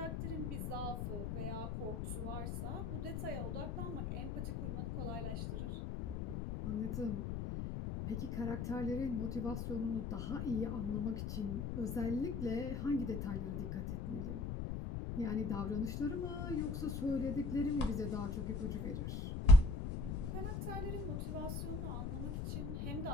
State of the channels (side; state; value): left; noise; rumble, 3 dB below the sound